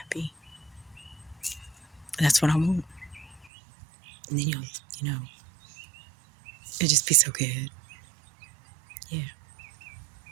That's what I want. And then it'll just be so good. Yeah.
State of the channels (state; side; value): drops out; left; at 3.5 s